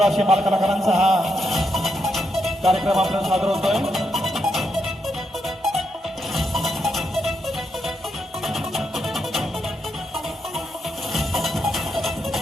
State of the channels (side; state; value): both; normal; correlation 0.81